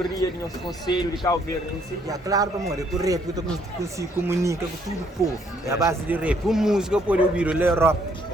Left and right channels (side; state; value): both; normal; correlation 0.67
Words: do nosso conselho de Cabo Verde. Claro, amor, é que o rap eu consigo comunicar com todo o povo. É a base de rap. A música pode ouvir o Europa.